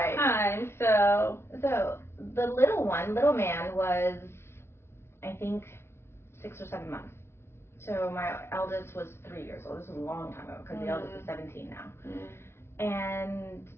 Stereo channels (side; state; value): right; late; 0.12 ms